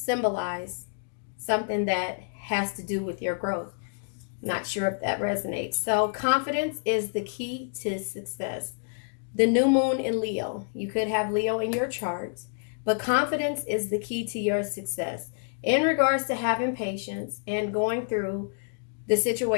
something that has to do with your growth. Not sure if that resonates. So, confidence is the key to success. The new moon in Leo. You could have Leo in your charts, but confidence is the key to your success in regards to having patience and going through the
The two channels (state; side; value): silent; right; digital silence